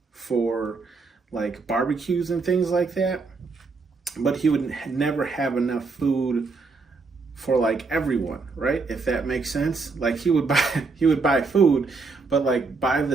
for like barbecues and things like that, but he would never have enough food for like everyone, right? If that makes sense. Like he would buy food, but like by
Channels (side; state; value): left; quieter; 4.2 dB